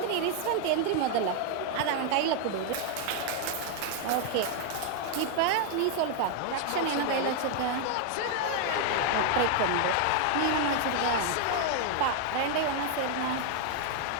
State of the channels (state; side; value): different; both; correlation 0.00